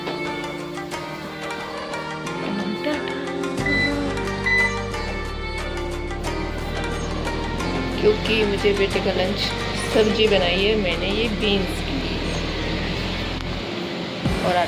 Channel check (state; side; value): identical; both; correlation 1.00